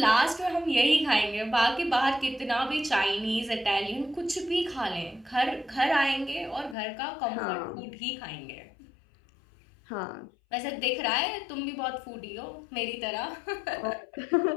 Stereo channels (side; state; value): right; drops out; at 6.8 s